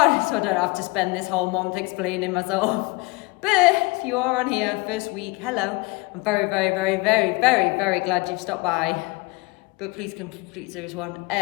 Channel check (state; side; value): quieter; right; 25.2 dB